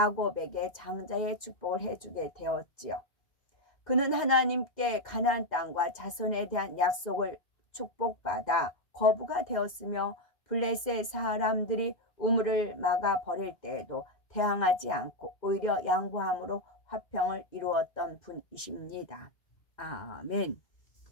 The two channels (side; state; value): right; late; 2.1 ms